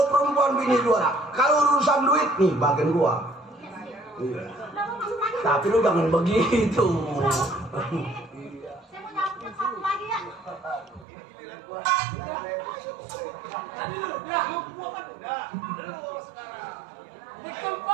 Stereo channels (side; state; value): left; drops out; at 11.1 s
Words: perempuan bini juara. Kalau urusan duit nih bagian gua. Iya. Tapi lo jangan begitu. Saya mau nyambut satu lagi ya.